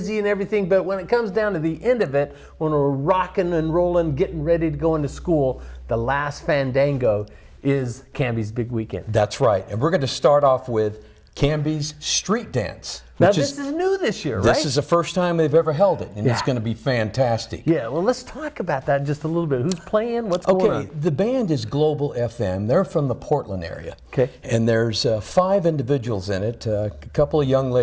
and everything, but when it comes down to the end of it, when we're rocking and rolling, getting ready to go into school, the last fandango is Canby's big weekend. That's right. And we're going to start off with Canby's street dance. Now, this is new this year, right? This is the first time they've ever held it, and it's going to be fantastic. Yeah, well, let's talk about that just a little bit. Who's playing? What's going on? Okay, the band is Global FM. They're from the Portland area. Okay. And there's 5 individuals in it, a couple of young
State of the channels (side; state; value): both; identical; correlation 1.00